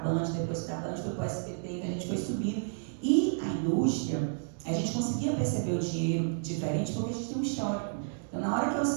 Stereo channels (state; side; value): silent; left; digital silence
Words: depois da Band foi para o SBT, então a gente foi subindo. E a indústria, a gente conseguia perceber o dinheiro diferente porque a gente tem um histórico. Então, na hora que eu